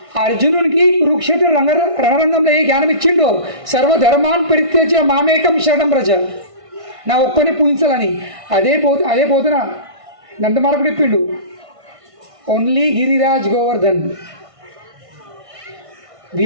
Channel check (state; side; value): late; left; 1.6 ms